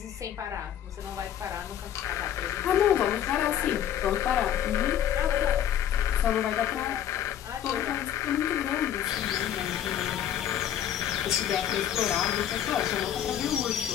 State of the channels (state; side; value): quieter; right; 10.3 dB